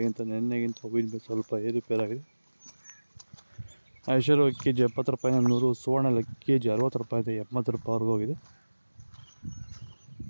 ನೆನ್ನೆಗಿಂತ ಹೂವಿನ ಬೆಲೆ ಸ್ವಲ್ಪ ಏರುಪೇರಾಗಿದೆ. ಐಶ್ವರ್ಯ ಕೆಜಿ 70 ರೂಪಾಯಿನ 100, ಸುವರ್ಣ ಕೆಜಿ 60 ರೂಪಾಯಿಂದ 80 ರೂಪಾಯಿವರೆಗೂ ಹೋಗಿದೆ.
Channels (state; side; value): inverted; both; correlation -1.00